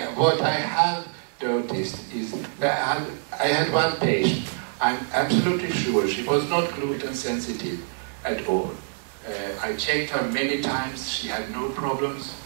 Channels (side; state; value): left; silent; digital silence